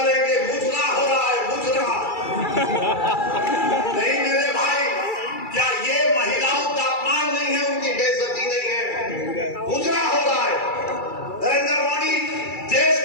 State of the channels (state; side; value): late; right; 2.3 ms